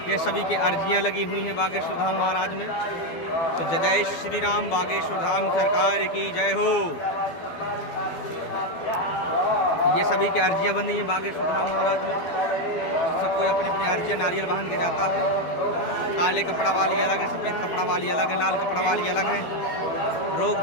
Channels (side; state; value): right; late; 12 ms